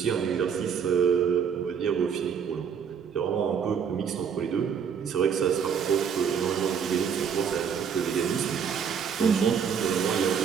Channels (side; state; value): left; quieter; 7.2 dB